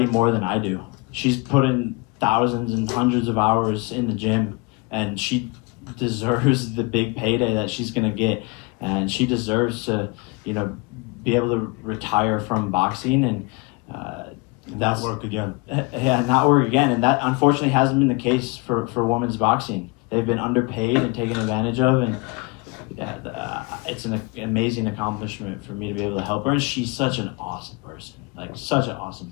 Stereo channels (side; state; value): right; quieter; 27.6 dB